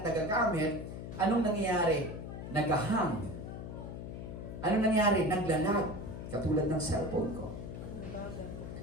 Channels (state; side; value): noise; left; hum, 8 dB below the sound